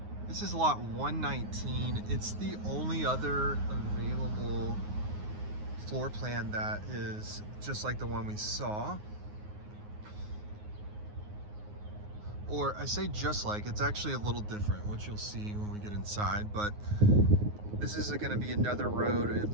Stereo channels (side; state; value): left; late; 9.6 ms